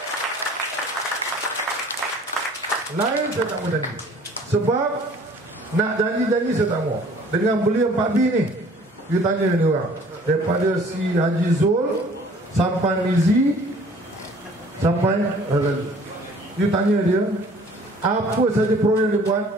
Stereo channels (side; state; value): both; normal; correlation 0.52